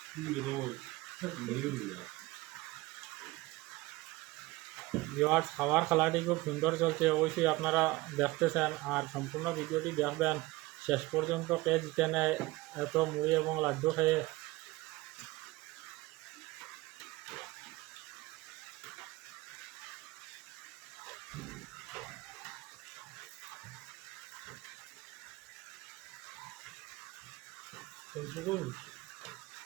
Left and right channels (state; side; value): quieter; left; 20.3 dB